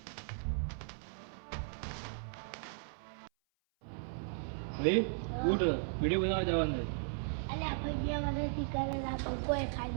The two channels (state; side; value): silent; left; 53 dB below the other